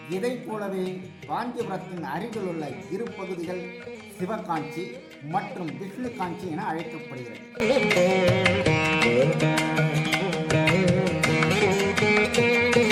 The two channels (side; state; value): both; identical; correlation 1.00